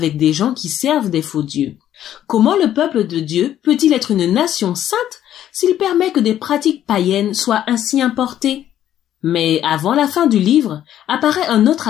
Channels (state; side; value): quieter; right; 11.4 dB